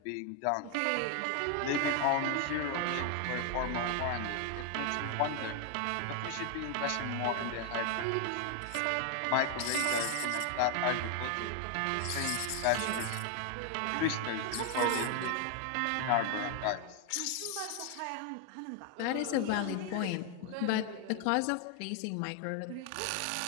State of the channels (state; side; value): different; both; correlation 0.01